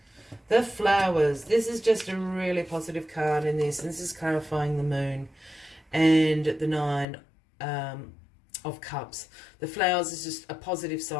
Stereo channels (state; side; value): drops out; right; at 7.1 s